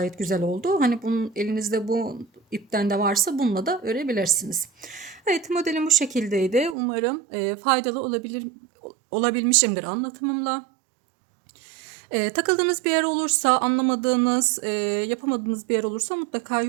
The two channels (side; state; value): left; drops out; at 6.8 s